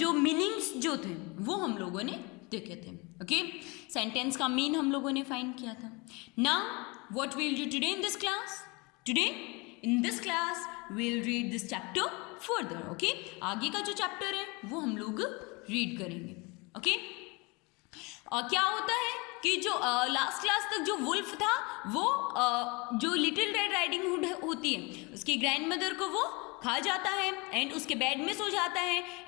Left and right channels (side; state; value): right; quieter; 27.3 dB